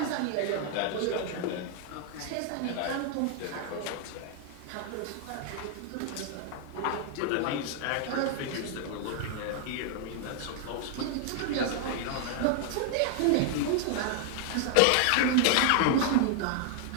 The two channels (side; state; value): both; different; correlation 0.00